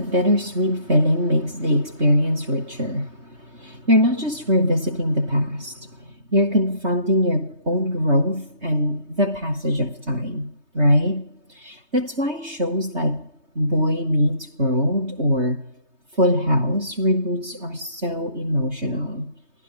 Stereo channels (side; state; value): left; late; 3.2 ms